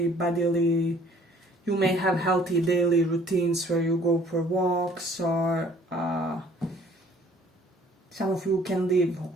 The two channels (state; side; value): normal; both; correlation 0.56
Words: bodily, you may have healthy daily routines where you go for walks, or some of you can live